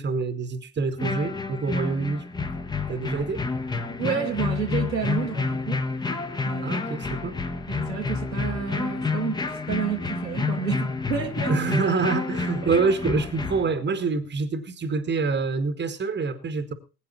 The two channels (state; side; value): normal; both; correlation 0.48